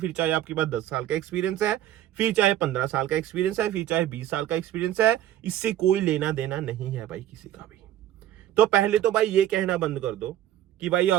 चाहे आपके पास 10 साल का एक्सपीरियंस है, फिर चाहे 15 साल का एक्सपीरियंस है, फिर चाहे 20 साल का एक्सपीरियंस है, इससे कोई लेना देना नहीं है भाई किसी का भी। तो पहले तो भाई ये कहना बंद कर दो कि भाई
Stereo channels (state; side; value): quieter; left; 12.4 dB